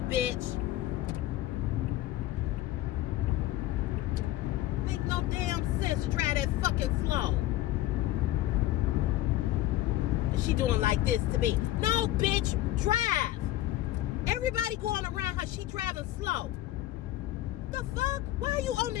bitch. Make no damn sense to drive that fucking slow. She doing like this to me. No, bitch, drive. Everybody going around her, she driving slow. The fuck? Why are you on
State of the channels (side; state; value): right; quieter; 15.1 dB